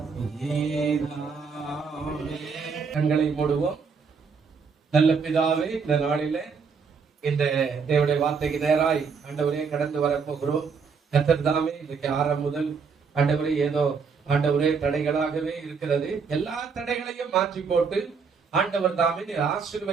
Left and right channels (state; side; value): quieter; left; 5.5 dB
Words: கண்களை மூடுவோம். நல்ல பிதாவே, இந்த நாளிலே இந்த தேவனுடைய வார்த்தைக்கு நேராய் ஆண்டவரே கடந்து வரப்போகிறோம். கர்த்தர் தாமே இன்றைக்கு 6 முதல் ஆண்டவரே ஏதோ ஆண்டவரே தடைகளாகவே இருக்கிறது. எல்லா தடைகளையும் மாற்றி போட்டு ஆண்டவர் தாமே